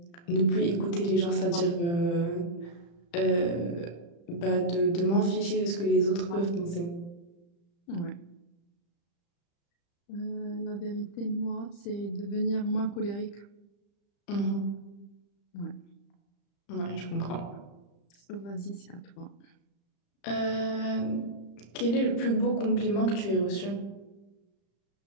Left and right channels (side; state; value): right; late; 35 ms